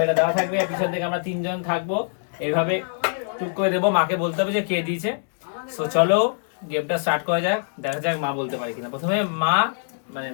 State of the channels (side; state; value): right; silent; digital silence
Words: এটা দেওয়া থাকবে, পিছন থেকে আমরা তিনজন থাকবো, এইভাবে টুক করে দেবো, মাকে বলতে হবে যে কে দিয়েছে। সো চলো গেমটা স্টার্ট করা যাক, দেখা যাক মা বলতে পারে কিনা। প্রথমে মা মানে